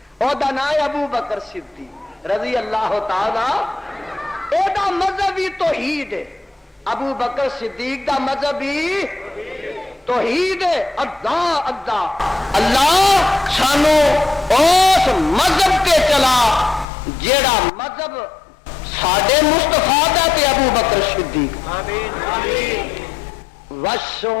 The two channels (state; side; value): drops out; right; at 16.9 s